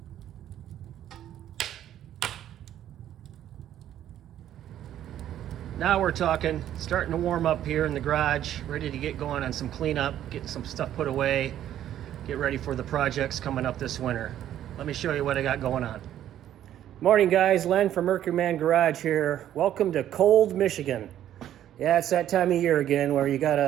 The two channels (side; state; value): left; quieter; 11.5 dB